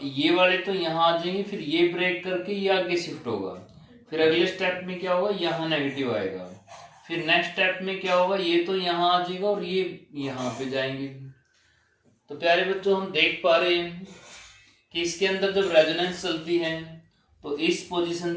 ये वाले तो यहाँ आ जाएंगे, फिर ये ब्रेक करके ये आगे शिफ्ट होगा। फिर अगले स्टेप में क्या होगा, यहाँ नेगेटिव आएगा। फिर नेक्स्ट स्टेप में क्या होगा, ये तो यहाँ आ जाएगा और ये यहाँ पे जाएंगे। तो प्यारे बच्चों हम देख पा रहे हैं कि इसके अंदर जब रेजोनेंस चलती है तो इस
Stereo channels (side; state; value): both; identical; correlation 1.00